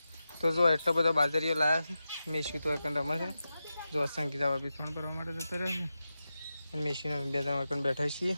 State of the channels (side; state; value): both; inverted; correlation -0.92